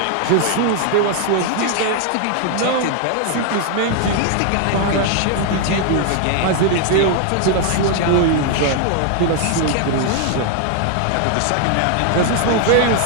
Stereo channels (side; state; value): both; different; correlation 0.00